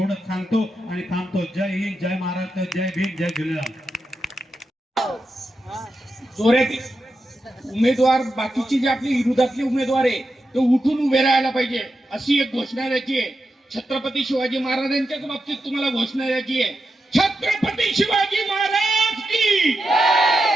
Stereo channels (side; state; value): both; normal; correlation 0.88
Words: सांगतो आणि थांबतो. जय हिंद, जय महाराष्ट्र, जय भीम, जय झुलेलाल. जोरात उमेदवार, बाकीची जी आपली विरोधातली उमेदवार आहे ते उठून उभे राहायला पाहिजे, अशी एक घोषणा द्यायची आहे. छत्रपती शिवाजी महाराजांच्याच बाबतीत तुम्हाला घोषणा द्यायची आहे. छत्रपती शिवाजी महाराज की